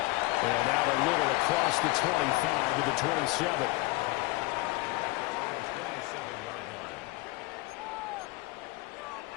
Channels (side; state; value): right; quieter; 22.2 dB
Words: And out a little across the 25 to the 27.